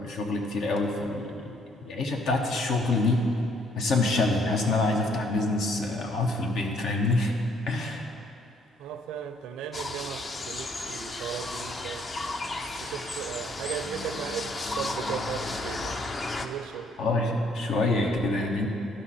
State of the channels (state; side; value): normal; both; correlation 0.66